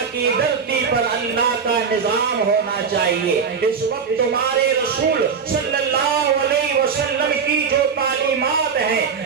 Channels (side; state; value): left; quieter; 6.1 dB